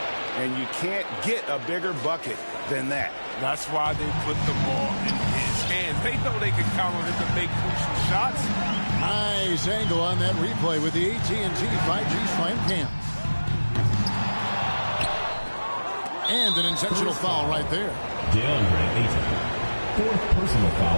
And you can't get a bigger bucket than that. That's why they put the ball in his hands. They know they can count on him to make crucial shots. Nice angle on that replay with the AT&T 5G Slam Cam. And an intentional foul right there. DeAndre Ayton. Fourth personal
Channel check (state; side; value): inverted; both; correlation -1.00